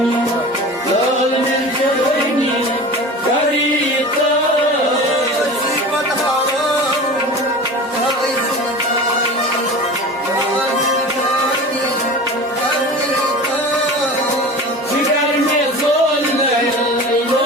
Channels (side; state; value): both; normal; correlation 0.35